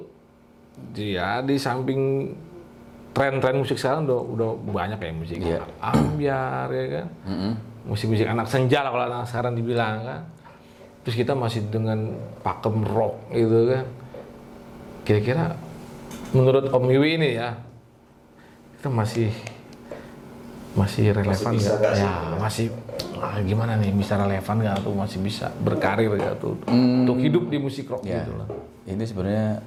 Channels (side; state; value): both; identical; correlation 1.00